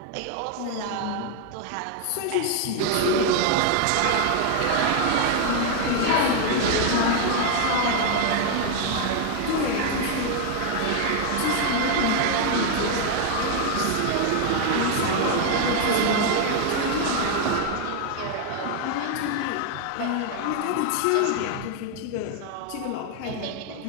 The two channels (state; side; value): different; both; correlation 0.00